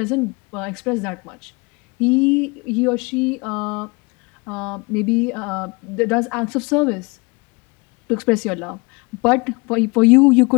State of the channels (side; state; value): right; quieter; 28.1 dB